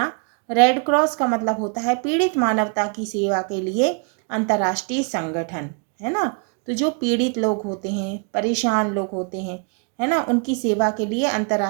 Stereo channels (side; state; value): left; quieter; 36.0 dB